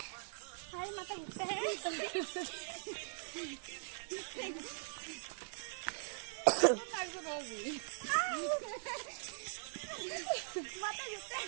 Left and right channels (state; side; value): silent; left; 50 dB below the other